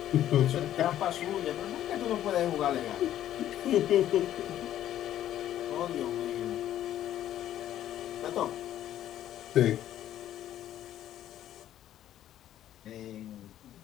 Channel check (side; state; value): right; quieter; 11.9 dB